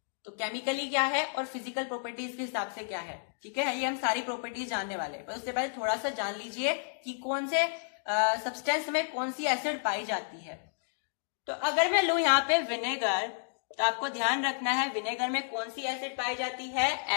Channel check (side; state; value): right; silent; digital silence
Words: तो केमिकली क्या है और फिजिकल प्रॉपर्टीज के हिसाब से क्या है। ठीक है, ये हम सारी प्रॉपर्टीज जानने वाले हैं, पर उससे पहले थोड़ा सा जान लीजिए कि कौन से सब्सटेंस में कौन सी एसिड पाई जाती है। तो अगर मैं लूं यहाँ पे विनेगर, तो आपको ध्यान रखना है विनेगर में कौन सी एसिड पाई जाती है,